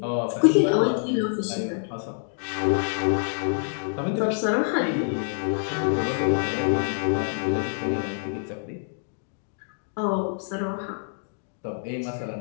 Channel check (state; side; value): silent; right; digital silence